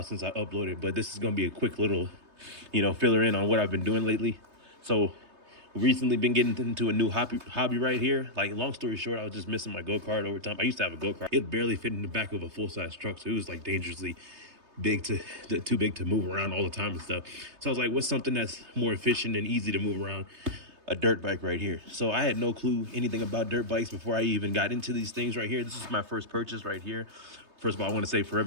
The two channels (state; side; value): late; left; 3.3 ms